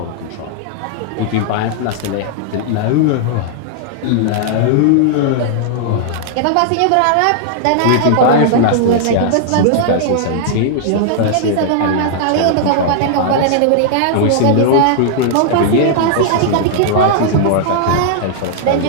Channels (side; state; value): both; different; correlation -0.01